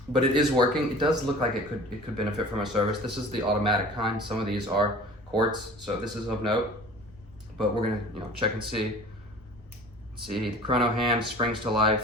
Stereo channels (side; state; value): both; normal; correlation 0.43